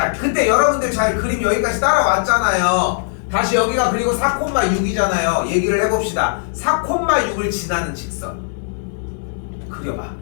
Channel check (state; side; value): silent; right; digital silence